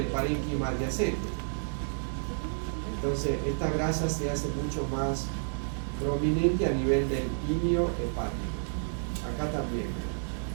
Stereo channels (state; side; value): silent; left; digital silence